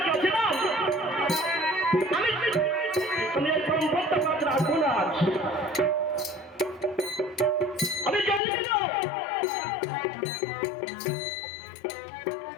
শ্রীরাম আমি এই ব্রহ্মত্ব পদ রাখবো না, আমি জন্মে দাও।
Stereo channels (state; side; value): drops out; right; at 8.4 s